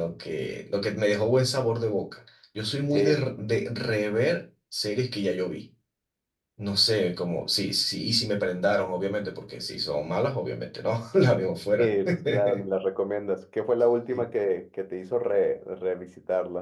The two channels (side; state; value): both; identical; correlation 1.00